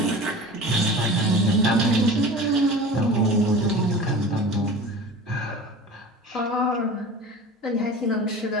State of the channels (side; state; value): both; normal; correlation 0.37